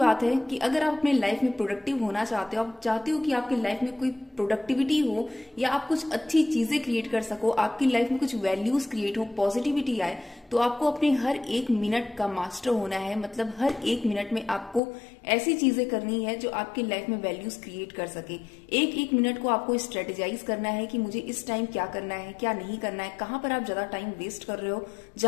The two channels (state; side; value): drops out; right; at 14.8 s